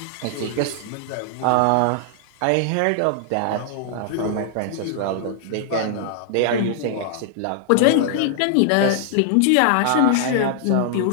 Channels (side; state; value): both; different; correlation -0.01